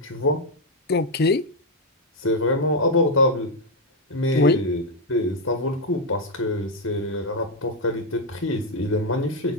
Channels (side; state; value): both; normal; correlation 0.02